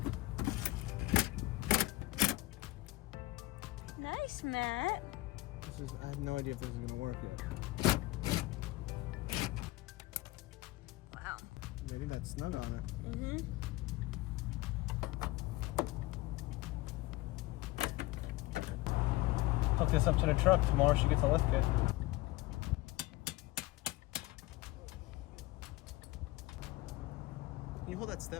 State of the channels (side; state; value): right; quieter; 19.4 dB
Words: Nice, Matt. I have no idea if this is gonna work yet. Wow. Maybe that's snug on it. Mm-hmm. Hook this up to the truck. Tomorrow she gets a lift kit. Can you hold that